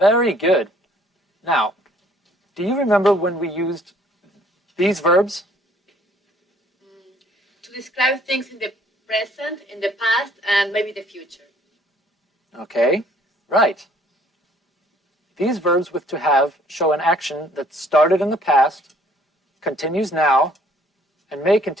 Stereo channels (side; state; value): both; normal; correlation 0.60